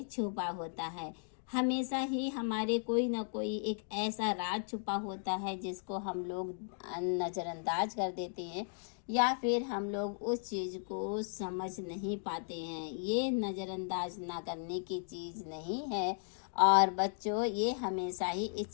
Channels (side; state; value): right; silent; digital silence